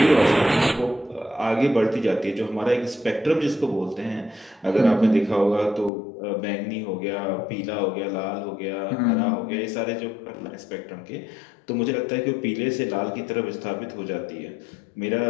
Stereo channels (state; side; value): drops out; right; at 5.9 s